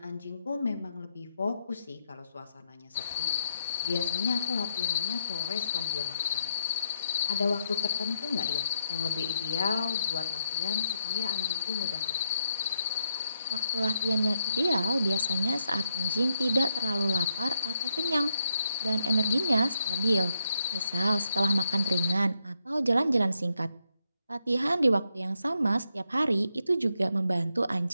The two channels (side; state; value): both; inverted; correlation -0.79